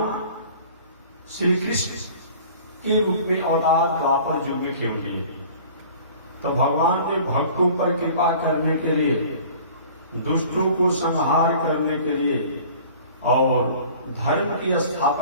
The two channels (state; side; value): inverted; both; correlation -0.47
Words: श्री कृष्ण के रूप में अवतार द्वापर युग में क्यों लिए? तो भगवान ने भक्तों पर कृपा करने के लिए, दुष्टों को संहार करने के लिए और धर्म की